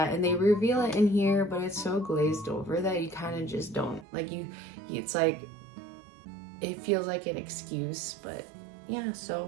And they reveal it in here, but it's so glazed over that you kind of just don't like, it's like it feels like an excuse. But yeah,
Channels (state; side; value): drops out; left; at 4.0 s